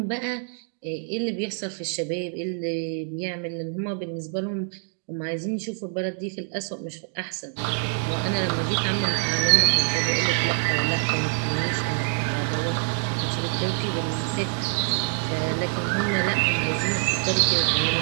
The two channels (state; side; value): silent; left; 60 dB below the other